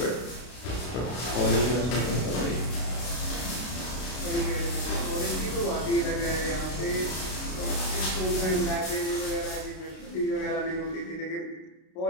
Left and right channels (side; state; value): right; late; 32 ms